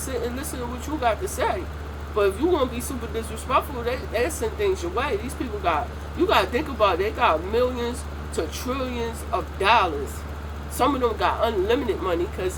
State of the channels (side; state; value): both; identical; correlation 1.00